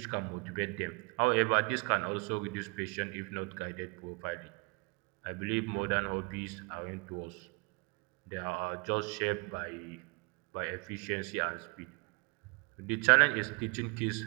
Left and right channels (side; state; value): left; quieter; 30.5 dB